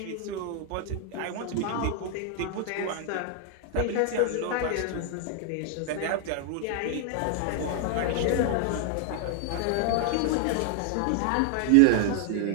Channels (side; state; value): both; different; correlation 0.00